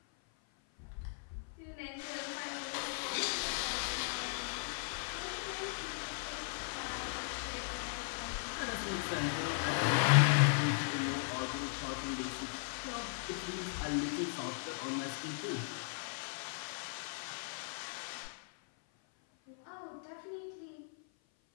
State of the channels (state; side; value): silent; right; 53 dB below the other